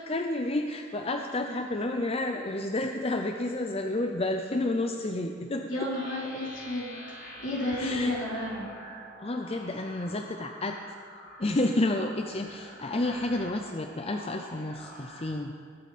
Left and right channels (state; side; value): normal; both; correlation 0.54